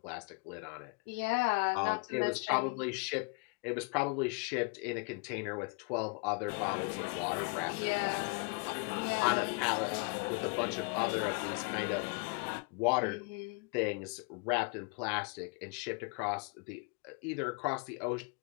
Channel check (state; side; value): quieter; right; 31.9 dB